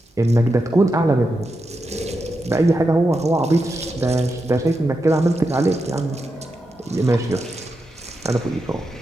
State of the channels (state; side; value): normal; both; correlation 0.87